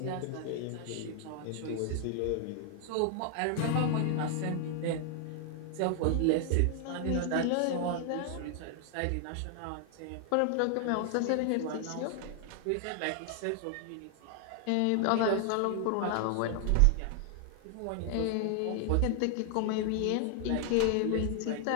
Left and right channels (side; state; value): both; different; correlation 0.00